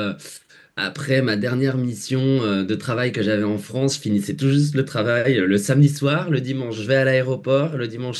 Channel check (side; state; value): both; identical; correlation 1.00